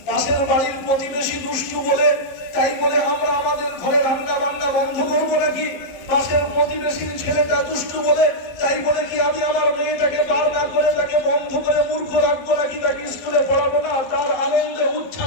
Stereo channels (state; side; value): late; right; 12 ms